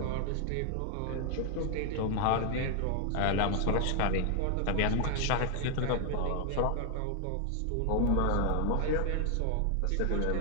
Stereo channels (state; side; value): different; both; correlation 0.00